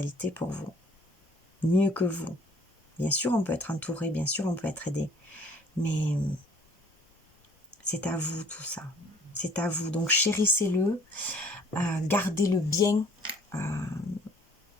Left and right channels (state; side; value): normal; both; correlation 0.55